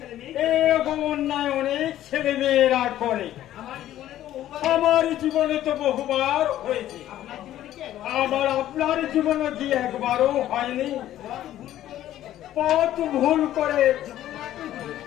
এরকম অন্যায় অনেক ছেলে মেয়েরা করে। আমার জীবনে তো বহুবার হয়েছে। আবার আপনার জীবনে কি একবারও হয়নি? পথ ভুল করে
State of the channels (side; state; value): right; quieter; 12.9 dB